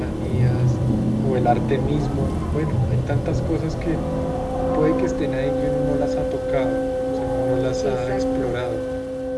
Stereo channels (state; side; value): identical; both; correlation 1.00